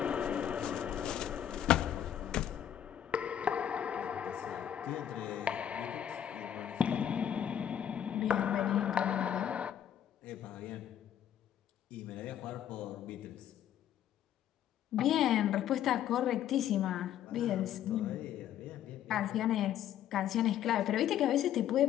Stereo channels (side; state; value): right; quieter; 10.4 dB